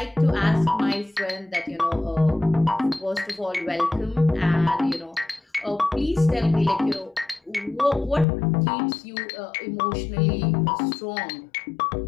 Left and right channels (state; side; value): drops out; right; at 8.2 s